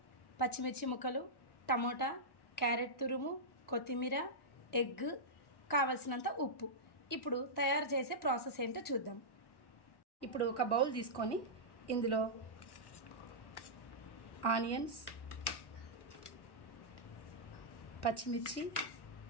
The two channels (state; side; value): late; right; 1.1 ms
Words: పచ్చిమిర్చి ముక్కలు, టమోటా, క్యారెట్ తురుము, కొత్తిమీర, ఎగ్, కావలసినంత ఉప్పు. ఇప్పుడు తయారు చేసే ప్రాసెస్ ఏంటో చూద్దాం. ఇప్పుడు ఒక బౌల్ తీసుకొని ఇందులో ఆనియన్స్, పచ్చిమిర్చి,